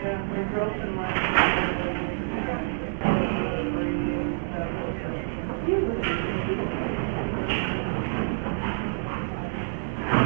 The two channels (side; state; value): left; silent; digital silence